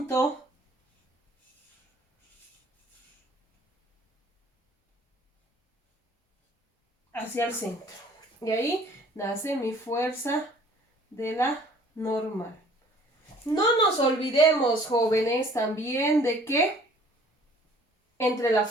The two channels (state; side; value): normal; both; correlation 0.54